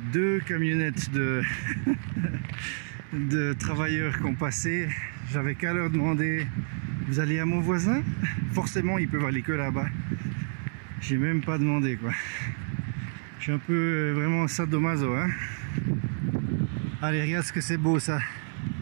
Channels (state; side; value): silent; left; digital silence